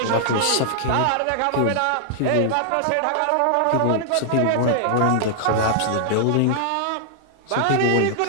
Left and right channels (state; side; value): different; both; correlation -0.01